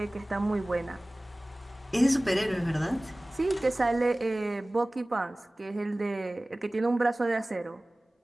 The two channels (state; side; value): normal; both; correlation 0.98